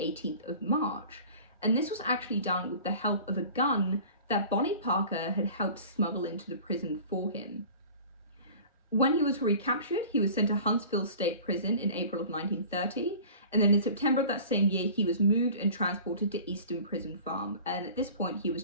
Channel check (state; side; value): inverted; both; correlation -0.43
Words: of March. And this was actually done with the help of a gun that Bonnie Parker had helped smuggle into the prison for him. When he was recaptured, he was sent to Huntsville State Prison in April of 1930, and then in September of that same year, he was moved and transported to Easton Prison Farm, and at this point, he was